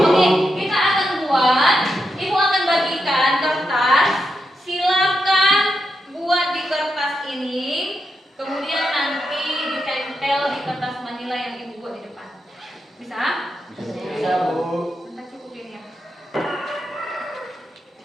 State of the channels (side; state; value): both; normal; correlation 0.85